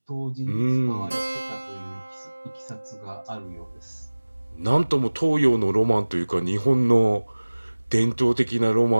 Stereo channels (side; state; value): both; inverted; correlation -1.00